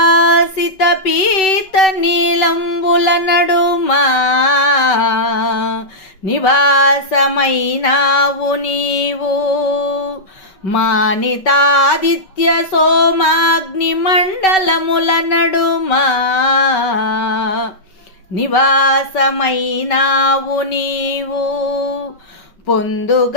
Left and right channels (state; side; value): late; right; 5.3 ms